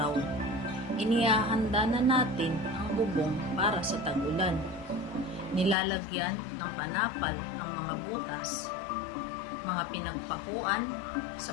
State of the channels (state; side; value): drops out; right; at 5.8 s